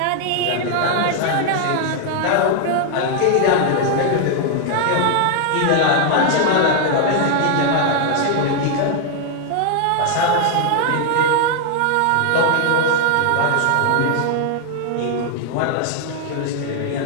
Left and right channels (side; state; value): both; different; correlation 0.00